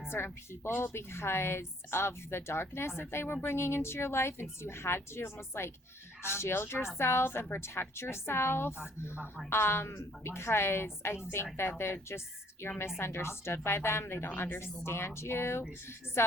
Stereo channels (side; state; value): both; normal; correlation 0.62